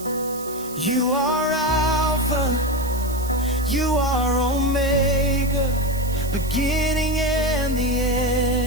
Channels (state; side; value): noise; right; hiss, 14 dB below the sound